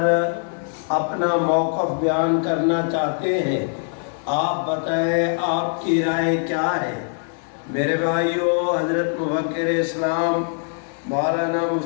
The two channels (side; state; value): right; silent; 58 dB below the other